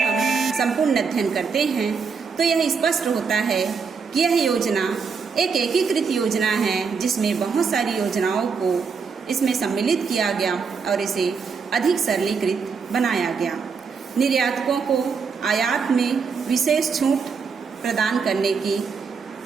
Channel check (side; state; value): left; quieter; 5.5 dB